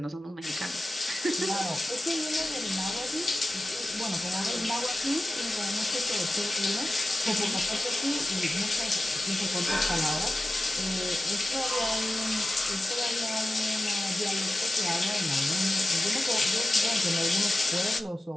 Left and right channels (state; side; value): normal; both; correlation 0.94